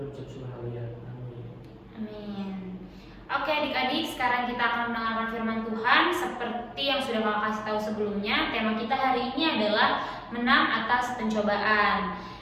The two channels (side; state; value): both; identical; correlation 1.00